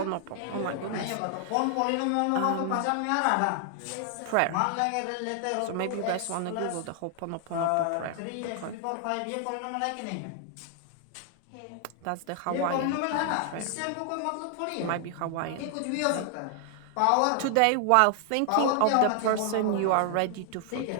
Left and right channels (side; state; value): both; different; correlation 0.00